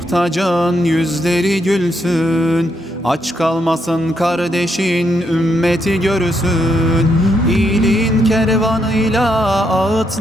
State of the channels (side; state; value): both; normal; correlation 0.77